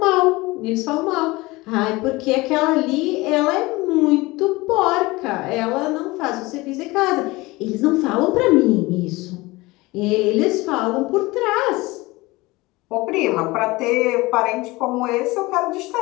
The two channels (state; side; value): quieter; right; 21.5 dB